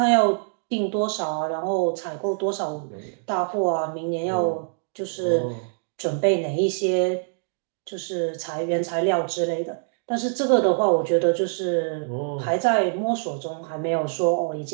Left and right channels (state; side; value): silent; left; digital silence